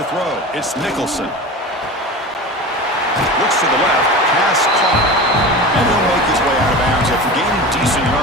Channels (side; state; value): both; normal; correlation 0.31